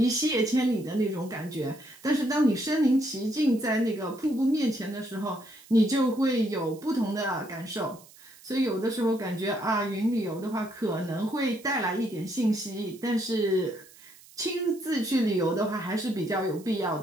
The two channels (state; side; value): noise; right; hiss, 23 dB below the sound